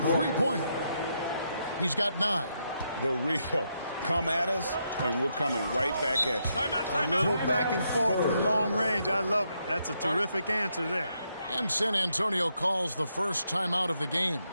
3-pointer. He's got 9. The real. Come at us, and we're coming right back at you. A little back and forth from long range. I love it. That's a terrific answer there. And San Antonio calls the first timeout of the game.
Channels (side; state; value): both; inverted; correlation -0.79